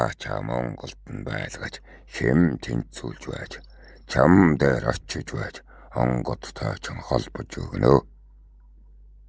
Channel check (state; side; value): identical; both; correlation 1.00